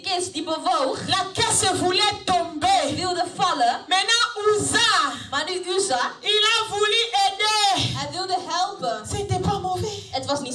kist die bewoog. La caisse voulait tomber. Die wilde vallen. Maintenant Uza. Maar nu Uza. Il a voulu aider. Hij wilde helpen. C'était pas mauvais. Het was niet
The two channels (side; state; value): both; identical; correlation 1.00